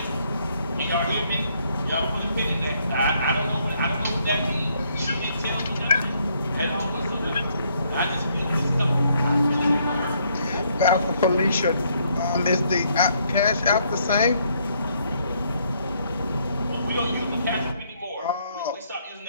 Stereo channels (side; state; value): both; inverted; correlation -0.71